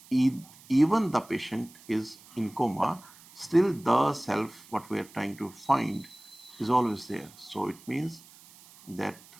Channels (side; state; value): right; noise; hiss, 23 dB below the sound